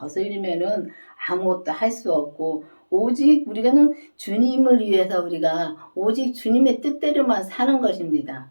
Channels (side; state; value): both; inverted; correlation -1.00